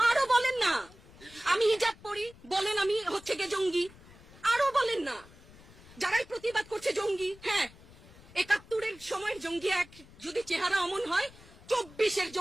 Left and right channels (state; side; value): noise; left; rumble, 22 dB below the sound